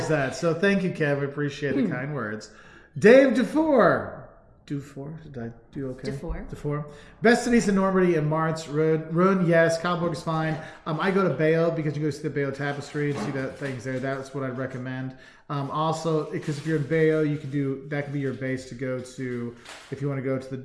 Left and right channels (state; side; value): identical; both; correlation 1.00